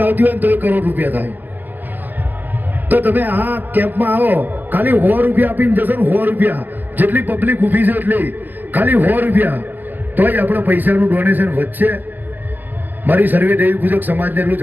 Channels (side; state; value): left; late; 0.087 ms